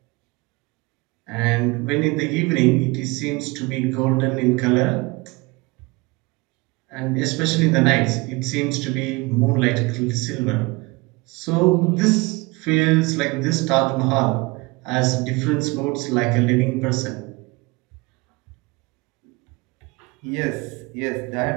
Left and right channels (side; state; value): left; quieter; 24.8 dB